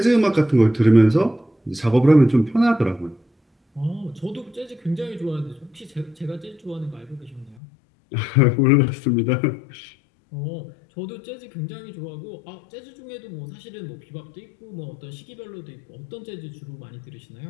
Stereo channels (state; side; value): drops out; right; at 7.6 s